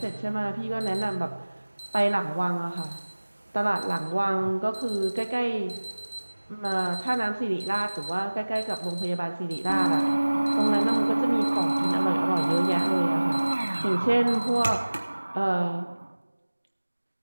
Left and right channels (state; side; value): inverted; both; correlation -1.00